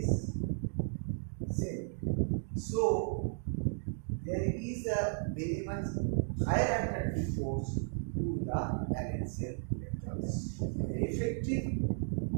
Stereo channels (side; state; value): left; silent; digital silence